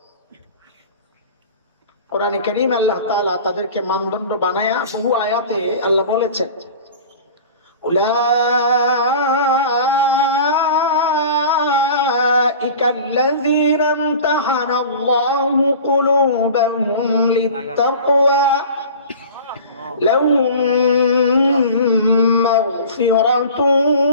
কোরআনে কারীম আল্লাহ তাআলা তাদেরকে মানদণ্ড বানায়া বহু আয়াতে আল্লাহ বলেছেন উলাইকা আল্লাযীনা ইমতাহানাল্লাহু কুলুবাহুম লিত্তাকওয়া লাহুম মাগফিরাতুন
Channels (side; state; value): both; inverted; correlation -0.40